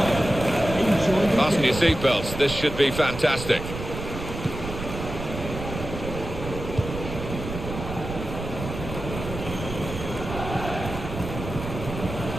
Fasten your seatbelts, this should be fantastic.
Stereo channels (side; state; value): right; noise; rumble, 8 dB below the sound